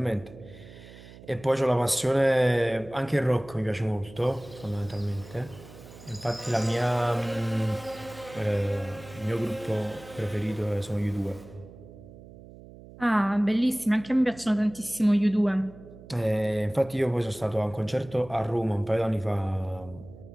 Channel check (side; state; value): right; noise; hum, 18 dB below the sound